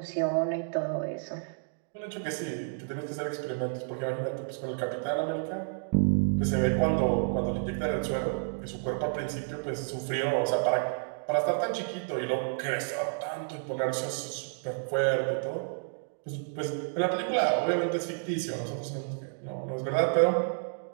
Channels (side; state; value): left; silent; digital silence